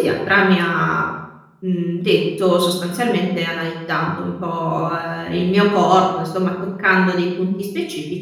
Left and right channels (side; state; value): both; identical; correlation 1.00